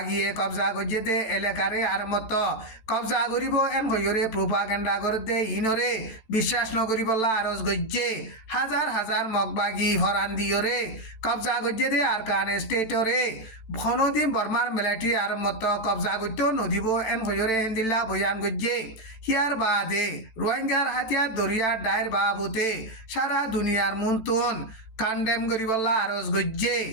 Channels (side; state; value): right; late; 14 ms